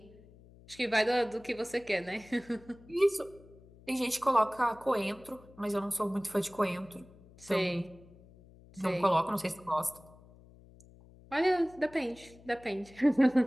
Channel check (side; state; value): left; noise; hum, 23 dB below the sound